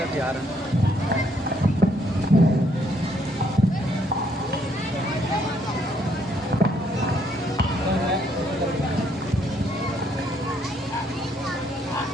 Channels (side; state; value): both; normal; correlation 0.70